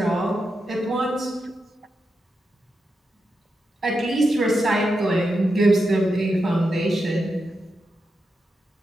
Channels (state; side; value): normal; both; correlation 0.87